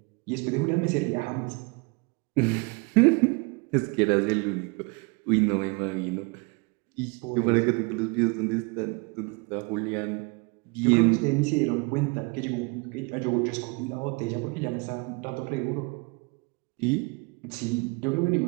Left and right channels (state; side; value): quieter; left; 29.8 dB